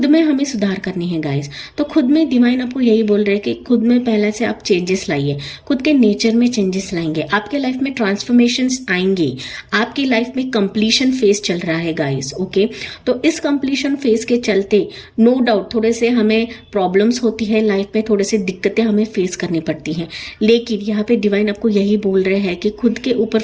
में हमें सुधार करनी है गाइस। तो खुद में डिवाइन आपको यही बोल रहे हैं कि खुद में पहले से आप चेंजेस लाइए, खुद के नेचर में चेंजेस लाएंगे, आपके लाइफ में ट्रांसफॉर्मेशंस आएंगे, आपकी लाइफ में कंप्लीशन फेज चल रहा है गाइस। ओके, तो इस कंप्लीशन फेज के चलते नो डाउट थोड़े से हमें प्रॉब्लम्स होती है लाइफ में, थोड़े से दिक्कतें हमें फेस करनी पड़ती हैं, लेकिन यहाँ पे डिवाइन आपको यही बोल रहे हैं कि खुद के ऊपर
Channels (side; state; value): both; identical; correlation 1.00